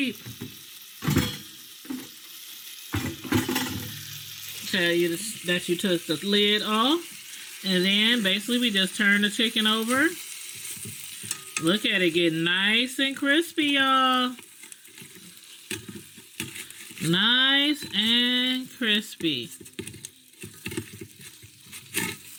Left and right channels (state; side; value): identical; both; correlation 1.00